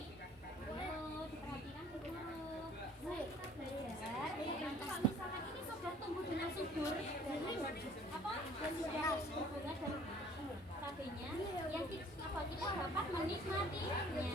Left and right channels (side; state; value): both; normal; correlation 0.54